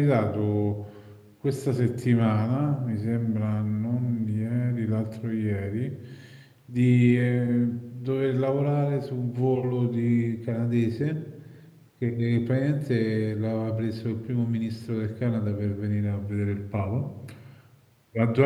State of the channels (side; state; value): both; identical; correlation 1.00